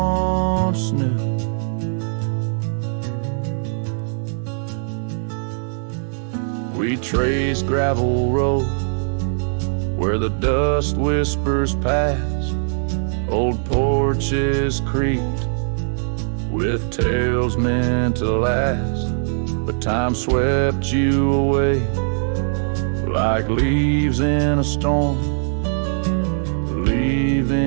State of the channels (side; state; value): left; silent; 60 dB below the other